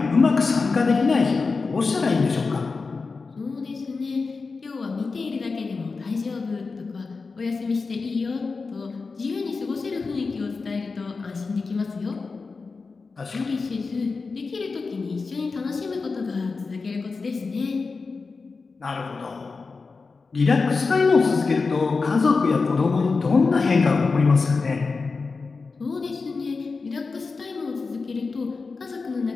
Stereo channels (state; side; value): quieter; right; 4.3 dB